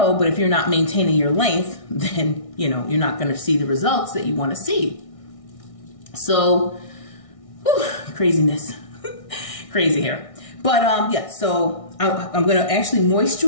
but if you're not maintaining your length, then, you know, you're not going to see the results that you want to see. So, whew, craziness, crazy hair. But yeah, so I'm going to actually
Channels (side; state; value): right; late; 1.6 ms